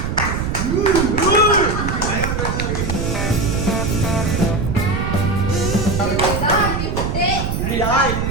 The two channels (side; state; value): right; noise; rumble, 2 dB below the sound